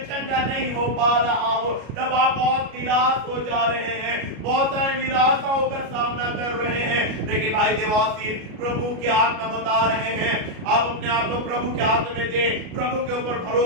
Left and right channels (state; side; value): late; left; 33 ms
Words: चंगा नहीं हो पा रहा हूं, तब आप बहुत निराश हो जा रहे हैं, बहुत सारे निराशाओं का सामना कर रहे हैं। लेकिन भाई देवाशीष, प्रभु के आत्मा बता रहे हैं, आप अपने आप को प्रभु के हाथ में दें, प्रभु के ऊपर